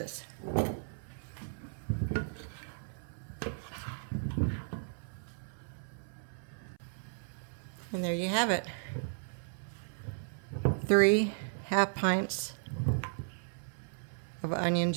And there you have it. 3 half pints of onion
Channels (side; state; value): left; silent; 54 dB below the other